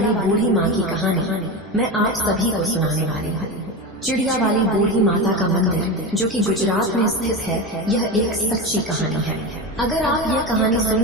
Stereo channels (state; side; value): normal; both; correlation 0.20